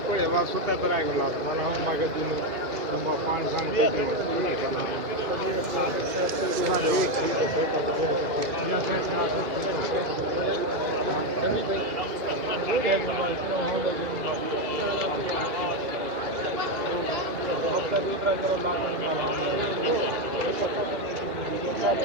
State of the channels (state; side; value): late; left; 2.5 ms